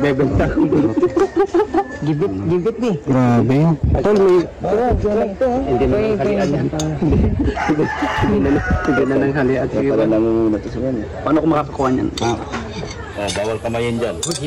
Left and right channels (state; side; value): identical; both; correlation 1.00